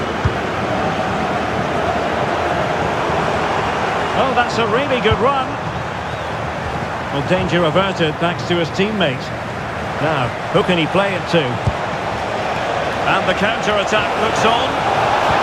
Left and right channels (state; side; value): identical; both; correlation 1.00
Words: Oh, that's a really good run. Well, danger averted thanks to his teammate. Now, who can he play it to? And the counter-attack looks on.